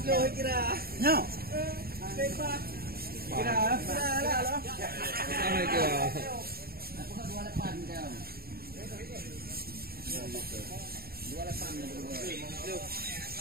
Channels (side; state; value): left; late; 0.44 ms